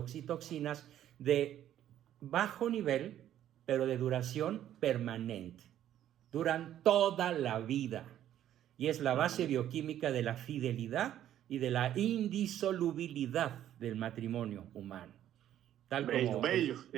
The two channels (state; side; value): quieter; left; 11.5 dB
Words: de bajo nivel, pero de duración permanente. Duran toda la vida, y es la base bioquímica de la fidelidad y de la indisolubilidad del matrimonio humano. Tal como